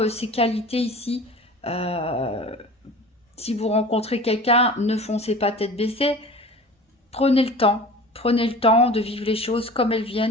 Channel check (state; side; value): normal; both; correlation 0.39